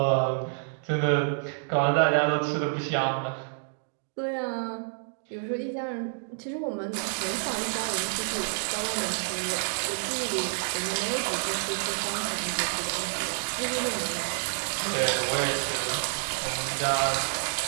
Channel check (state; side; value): silent; left; digital silence